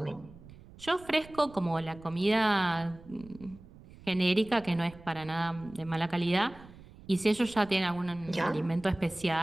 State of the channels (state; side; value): noise; right; rumble, 20 dB below the sound